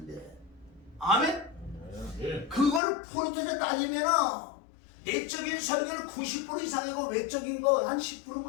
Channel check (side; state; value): right; drops out; at 2.8 s